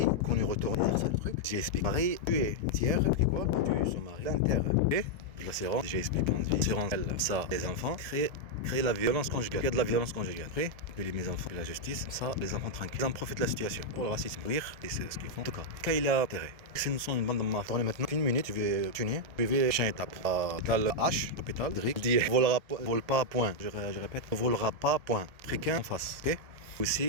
qu'on est retourné vers ça le truc. J'ai expliqué. Pareil, tuer, tiers, et quoi tuer son mari, l'inter. Et la séance, j'ai expliqué en vie. Séance, elle, ça, les enfants, créer la violence conjugale. Il y a de la violence conjugale. Après, puis mes enfants, la justice, ça, les enfants tranquilles. Ils en profitent de la situation pour le racisme. Rire, et c'est ce qu'ils font. En tout cas, quand il a intérêt. Si nous sommes une bande de mafia, maintenant, une minute, je vais tuer. Je vais changer étape. Dans le H, l'hôpital, Drick, dit vole pas, point. Je répète, volera pas, point. Fricain en face. Ok?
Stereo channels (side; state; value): left; late; 1.7 ms